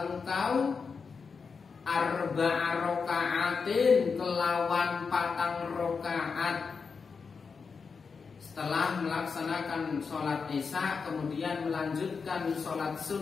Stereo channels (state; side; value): quieter; right; 5.3 dB